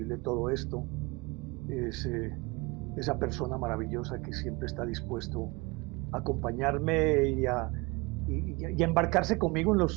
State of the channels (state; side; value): quieter; left; 25.6 dB